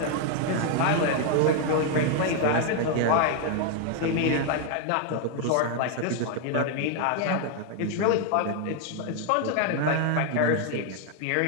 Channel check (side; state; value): both; different; correlation 0.00